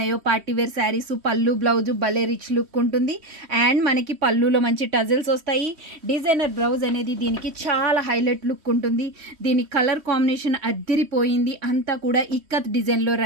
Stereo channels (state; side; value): late; left; 3.1 ms